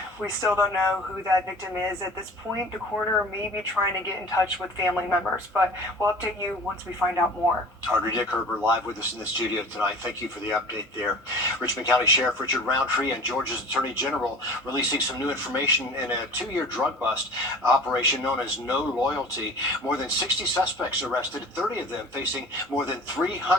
We still don't know who that victim is at this point. The coroner may be trying to get in touch with family members, but we'll update you once we find out more. Audrey Dickerber live with us in the studio tonight. Thank you for the update there. Richmond County Sheriff Richard Roundtree and Georgia's Attorney General releasing some new information in a 2-year drug bust operation known as No Loyalty. More than 60 suspects arrested, 30 of them facing more than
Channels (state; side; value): normal; both; correlation 0.42